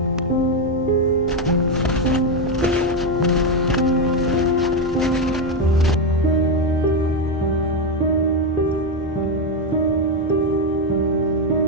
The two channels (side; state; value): both; normal; correlation 0.06